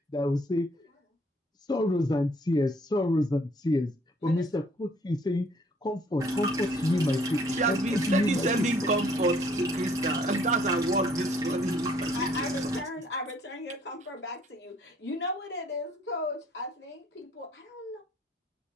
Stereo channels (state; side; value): normal; both; correlation 0.62